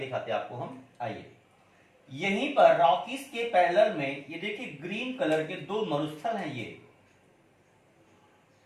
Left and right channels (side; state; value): both; identical; correlation 1.00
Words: हैं आपको हम। आइए, यहीं पर रॉकीज के पैरेलल में ये देखिए ग्रीन कलर के 2 मरुस्थल हैं। ये